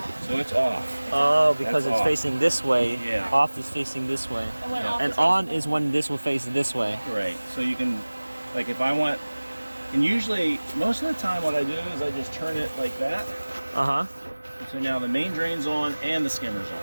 So it's off. Oh, because That's it's off. facing this way. Yeah. Off is facing this way. And when Yeah. off And is on facing- is when this will face this way. Right. So you can, like, if I want, and usually most of the time, what I do is I just turn it like that. Uh-huh. So now the main drain's on and the skimmer's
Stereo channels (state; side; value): inverted; both; correlation -1.00